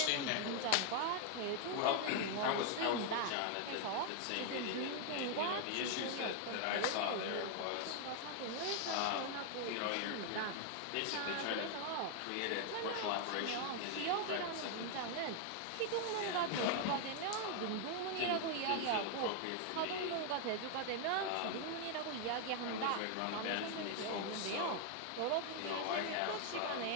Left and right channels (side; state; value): both; different; correlation 0.00